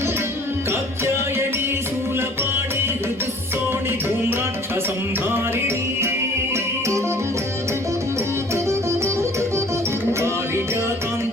कात्यायनी शूलपाणि ऋतुसोणि धूम्राक्षसंहारिणी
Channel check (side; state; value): both; normal; correlation 0.51